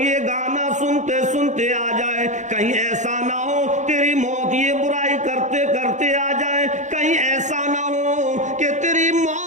گانا سنتے سنتے آ جائے، کہیں ایسا نہ ہو تیری موت یہ برائی کرتے کرتے آ جائے، کہیں ایسا نہ ہو کہ تیری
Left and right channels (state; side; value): late; left; 0.35 ms